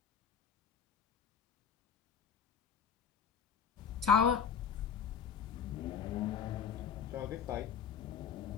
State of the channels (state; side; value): quieter; right; 7.3 dB